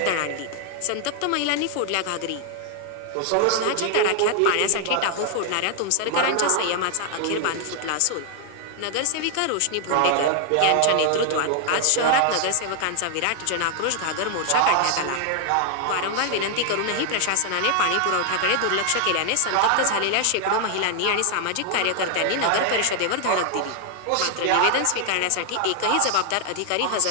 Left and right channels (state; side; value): different; both; correlation 0.00